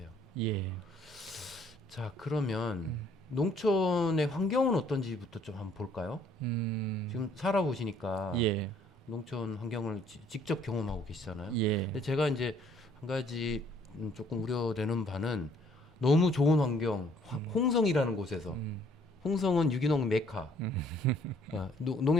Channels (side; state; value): both; normal; correlation 0.62